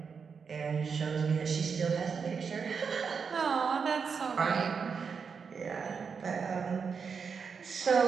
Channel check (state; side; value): quieter; left; 5.9 dB